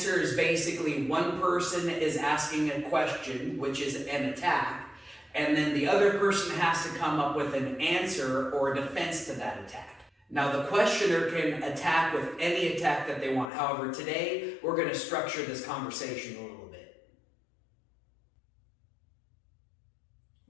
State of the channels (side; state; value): right; drops out; at 13.5 s